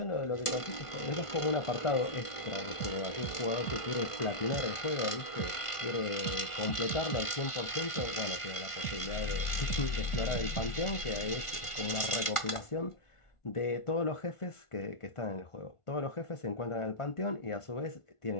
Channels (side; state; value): right; late; 1.5 ms